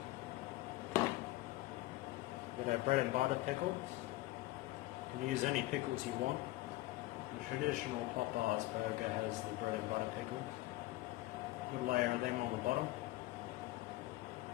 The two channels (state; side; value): quieter; right; 18.1 dB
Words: Got our bread and butter pickles. You can use any pickles you want. The traditional Popeye's burger has the bread and butter pickles. Good layer of them on the bottom.